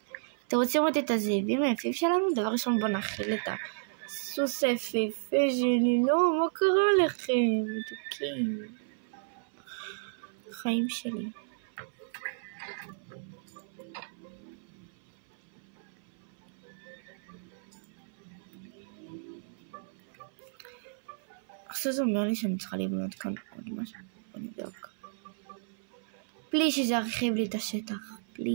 אתם רוצים לראות את הזאבים היפים שלנו? דבר ראשון בוא נכיל את הסוס היפהפה שלי. לא, מה קרה לכם? מתוקים. החיים שלי. עכשיו זה אומר לי שאני צריכה לבנות כאן עוד משהו. בוא נבדוק. בלי שזה ירחיב לי את השטח.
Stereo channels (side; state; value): left; silent; 56 dB below the other